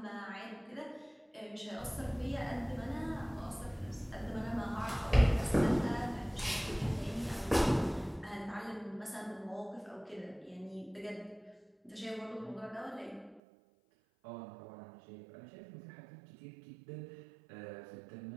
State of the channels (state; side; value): drops out; left; at 13.4 s